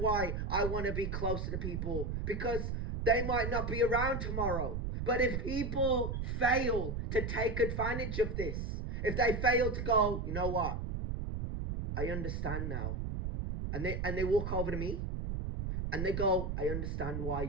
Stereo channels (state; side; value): noise; right; rumble, 2 dB below the sound